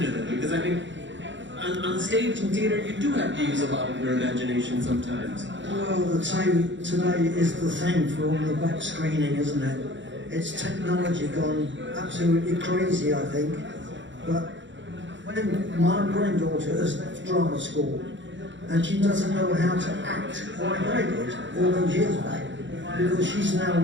them? Because I think on stage in theatre you do have to use a lot of your imagination sometimes. Well, the time today is the thing for all the back screening, isn't it? It's technology gone absolutely crazy, I think. But when my granddaughter has left drama school and she doesn't know how to act like I did all those years back, because she's now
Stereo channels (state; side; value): late; left; 0.54 ms